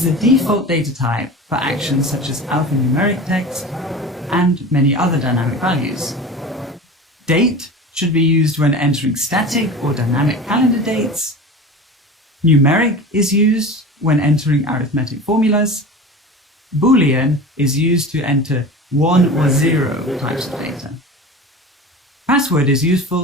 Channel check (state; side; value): normal; both; correlation 0.33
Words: the default data type for actions such as alphanumeric text and many other dynamic values. Date should be used when entering static or dynamic calendar dates. Numeric is used when entering arithmetic formulas. Boolean is used to enter 1 or 0 types of data. Password is